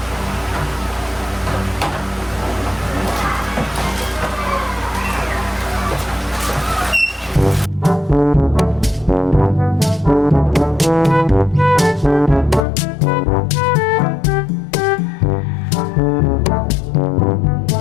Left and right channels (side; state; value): right; drops out; at 12.7 s